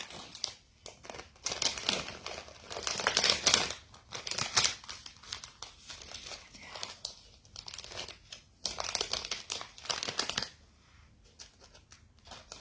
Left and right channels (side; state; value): both; identical; correlation 1.00